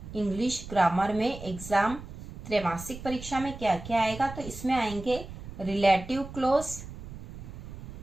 इंग्लिश ग्रामर में एग्जाम त्रैमासिक परीक्षा में क्या क्या आएगा, तो इसमें आएंगे रिलेटिव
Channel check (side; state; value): right; noise; rumble, 12 dB below the sound